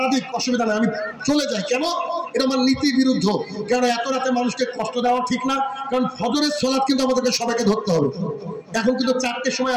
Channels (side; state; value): both; identical; correlation 1.00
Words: দিক অসুবিধা নেই, আমি চলে যাই। কেন? এটা আমার নীতি বিরুদ্ধ। কারণ এত রাতে মানুষকে কষ্ট দেওয়া ঠিক না। কারণ ফজরের সালাত কিন্তু আমাদেরকে সবাইকে ধরতে হবে। এখন কিন্তু 4টের সময়